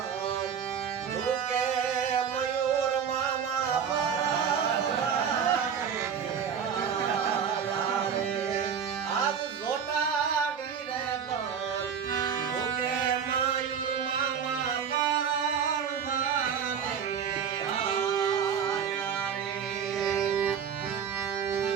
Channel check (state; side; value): quieter; left; 7.4 dB